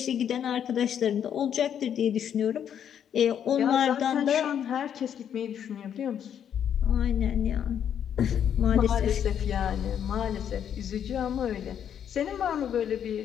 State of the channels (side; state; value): right; quieter; 9.0 dB